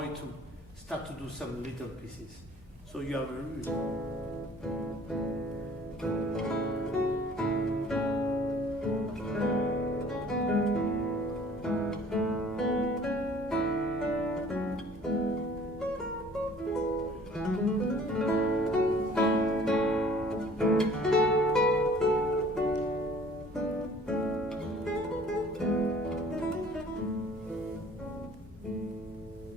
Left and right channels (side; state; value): both; normal; correlation 0.52